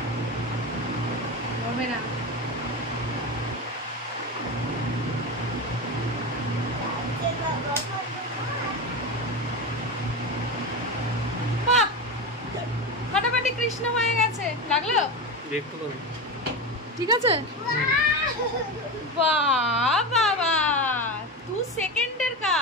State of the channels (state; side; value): normal; both; correlation 0.20